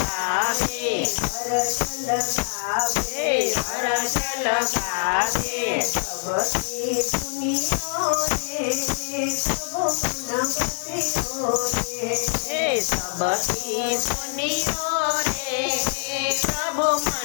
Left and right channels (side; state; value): right; silent; digital silence